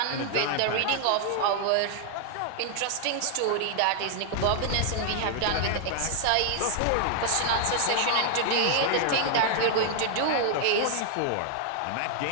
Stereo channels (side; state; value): both; different; correlation 0.00